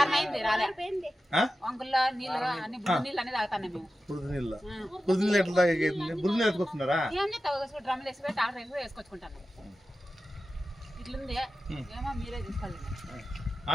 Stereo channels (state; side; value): normal; both; correlation 0.93